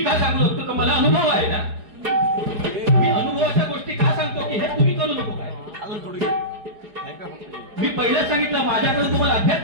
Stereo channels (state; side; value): late; left; 4.9 ms